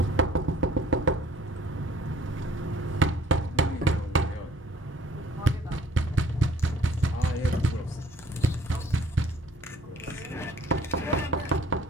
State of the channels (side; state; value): both; normal; correlation 0.57